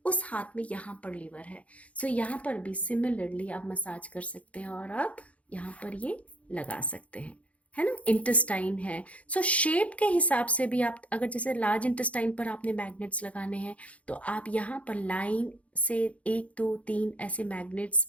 उस हाथ में यहाँ पर लिवर है। यहाँ पर भी सिमिलरली आप मसाज कर सकते हैं और आप यहाँ पर ये लगा सकते हैं, है ना। इंटेस्टाइन है, शेप के हिसाब से भी आप, अगर जैसे लार्ज इंटेस्टाइन पर आपने मैग्नेट्स लगाने हैं तो आप यहाँ पर लाइन से 1 2 3 ऐसे मैग्नेट्स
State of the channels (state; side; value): late; right; 0.065 ms